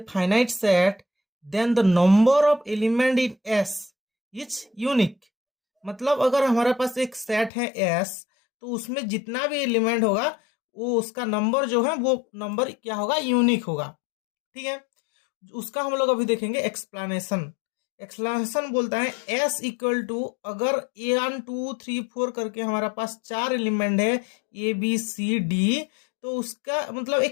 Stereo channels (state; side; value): drops out; right; at 7.5 s